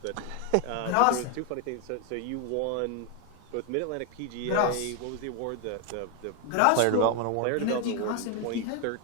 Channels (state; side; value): different; both; correlation 0.01